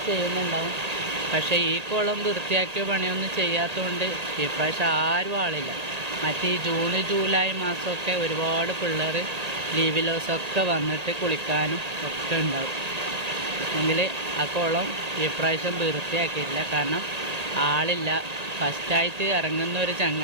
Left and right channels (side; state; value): left; late; 1.8 ms